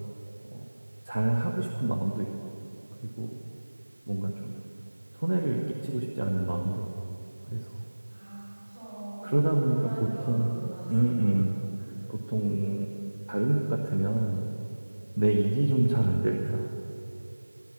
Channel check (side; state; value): both; inverted; correlation -1.00